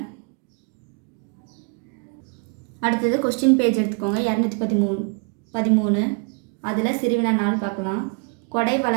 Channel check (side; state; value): left; quieter; 36.6 dB